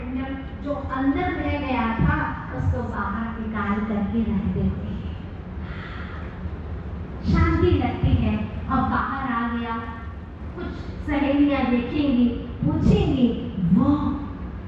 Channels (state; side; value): identical; both; correlation 1.00